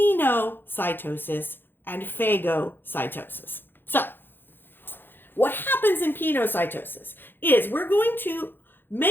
and phagocytosis. So, what happens in pinocytosis is we're going to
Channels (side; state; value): right; late; 0.099 ms